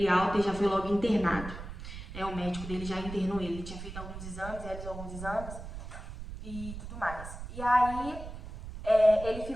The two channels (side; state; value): right; noise; rumble, 10 dB below the sound